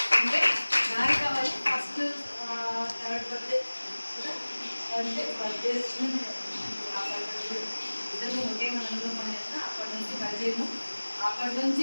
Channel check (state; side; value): inverted; both; correlation -1.00